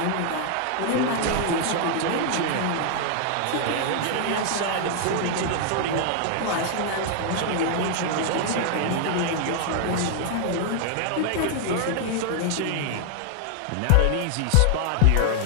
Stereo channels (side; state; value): both; different; correlation 0.00